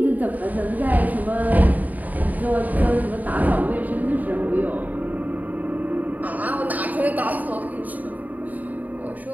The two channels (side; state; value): left; late; 0.077 ms